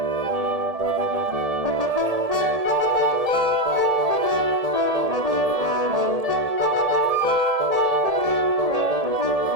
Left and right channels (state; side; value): late; left; 1.7 ms